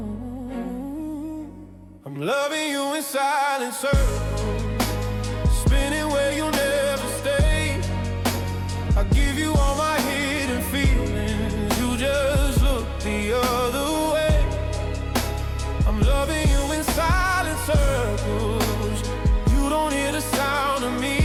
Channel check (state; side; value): identical; both; correlation 1.00